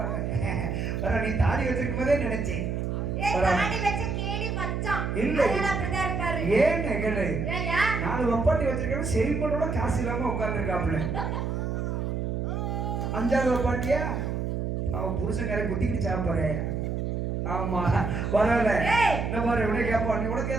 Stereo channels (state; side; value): noise; right; hum, 1 dB below the sound